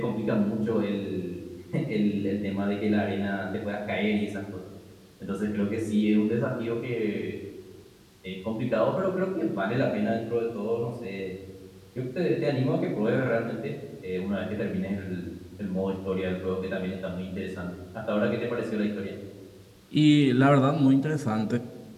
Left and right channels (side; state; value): both; identical; correlation 1.00